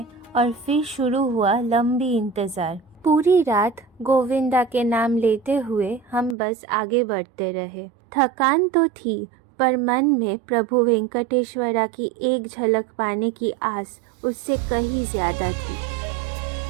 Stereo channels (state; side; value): drops out; left; at 6.4 s